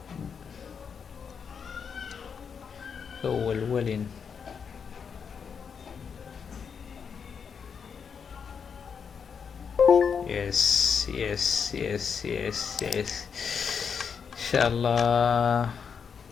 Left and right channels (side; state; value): right; quieter; 6.5 dB